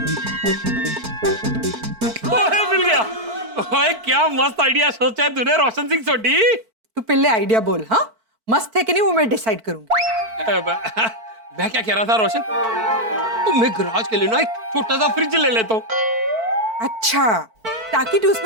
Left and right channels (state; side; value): late; left; 4.5 ms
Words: मिल गया। ओए क्या मस्त आइडिया सोचा है तूने रोशन सिंह सोटी। तू पहले आइडिया बोल। हाँ मस्त है कि नहीं वो मैं डिसाइड करूंगी। मैं क्या कह रहा था रोशन, तो मैं गराज के लिए ना एक छोटा सा फ्रिज ले लेता हूँ। अच्छा ताकि तू